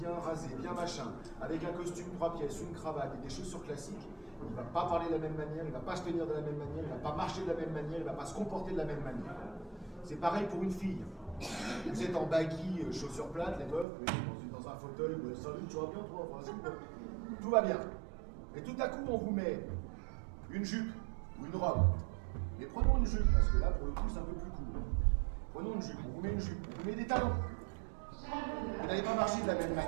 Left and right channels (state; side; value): drops out; left; at 13.9 s